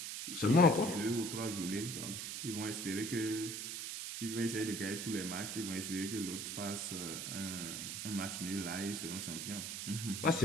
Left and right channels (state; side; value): noise; right; hiss, 5 dB below the sound